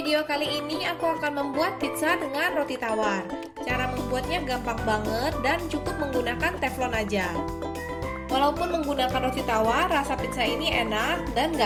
kali ini aku akan membuat pizza dengan roti tawar. Cara membuatnya gampang banget dan cukup menggunakan teflon aja. Walaupun menggunakan roti tawar, rasa pizza ini enak dan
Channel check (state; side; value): identical; both; correlation 1.00